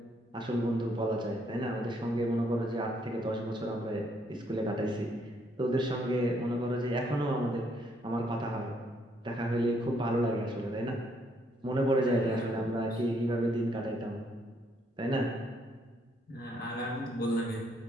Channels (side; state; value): both; normal; correlation 0.70